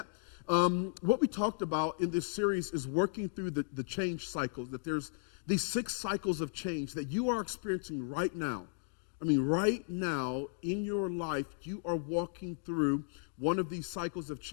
What we talked about in this series is working through the change cycles, that there's these 6 cycles of change that you are experiencing right now. I mean, right now in your life, you are walking through one of these cycles of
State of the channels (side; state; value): right; silent; digital silence